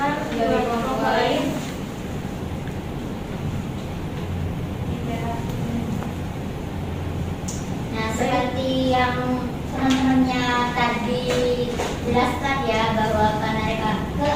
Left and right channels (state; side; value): identical; both; correlation 1.00